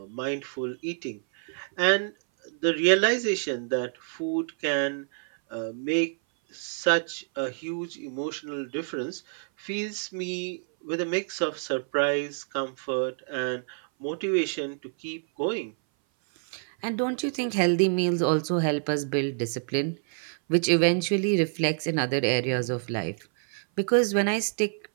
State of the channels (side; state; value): left; silent; 57 dB below the other